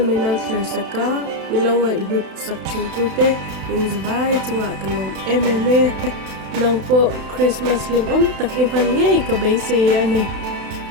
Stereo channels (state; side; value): late; left; 32 ms